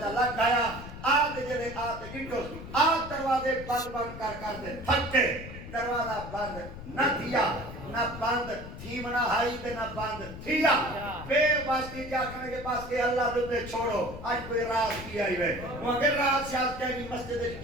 لگ گیا آتے جلے آتے گنٹوس آت دروازے بند کر دے تھکے دروازہ بند نہ تھیا نہ بند تھی منا ہائی دے نہ بند تھیا بے واسطی کیا کھنے کے پاس کہ اللہ دے چھوڑو آج کوئی راز کیا ہی ہے وہاں کے راز شاید کہیں مسجد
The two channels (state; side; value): noise; left; rumble, 12 dB below the sound